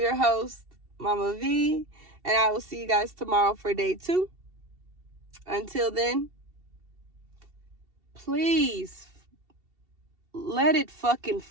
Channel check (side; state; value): left; late; 2.7 ms